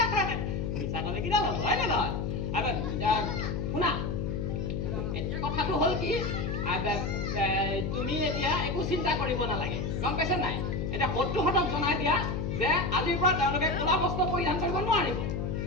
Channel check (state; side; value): noise; left; hum, 1 dB below the sound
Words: মিছা ক'লে কি দাম, হয় নে নহয়? শুনা, কথাটো হ'ল কি, তুমি এতিয়া একো চিন্তা কৰিব নালাগে, গম পাইছা নাই? এতিয়া শত্ৰুহঁতক জনাই দিয়া যে আজিৰ পৰা তেওঁলোকে ক'লা বস্ত্ৰ পৰিধান কৰিব নোৱাৰিব,